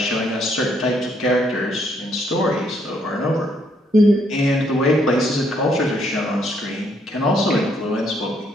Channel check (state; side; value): normal; both; correlation 0.71